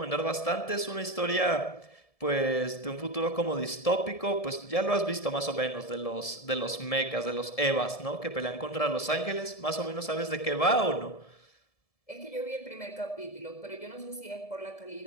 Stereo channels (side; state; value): right; late; 1.7 ms